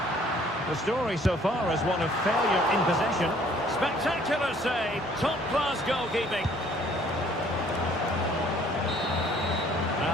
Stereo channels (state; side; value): normal; both; correlation 0.58